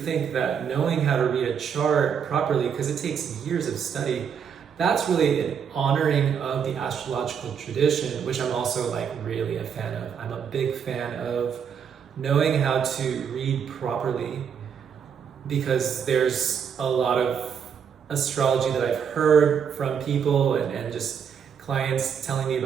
that knowing how to read a chart properly, because it takes years of study, that's really an honoring of the astrological tradition, which I'm also like really a fan of. I'm a big fan of knowing how to read properly, because there's a lot of astrology that I've heard from people and just clients telling me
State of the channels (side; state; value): left; quieter; 7.4 dB